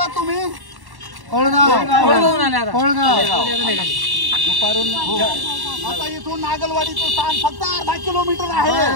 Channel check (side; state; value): left; late; 1.1 ms